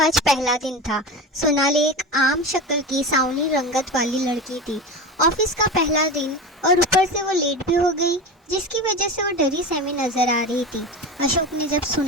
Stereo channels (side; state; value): both; normal; correlation 0.26